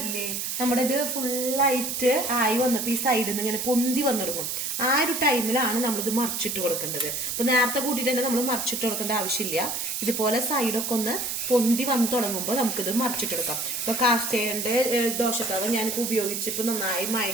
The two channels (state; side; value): noise; right; hiss, 3 dB below the sound